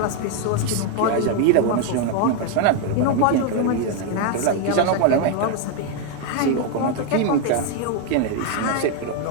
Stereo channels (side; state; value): both; different; correlation 0.01